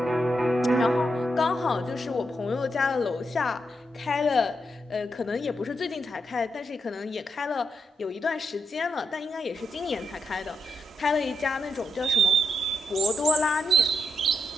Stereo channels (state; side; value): normal; both; correlation 0.82